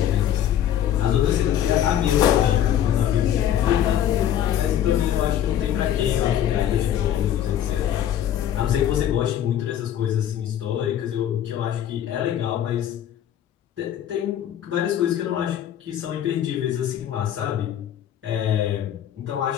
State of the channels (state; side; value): quieter; right; 10.7 dB